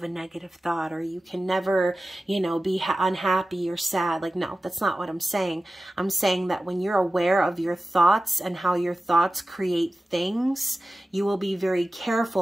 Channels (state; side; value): normal; both; correlation 0.95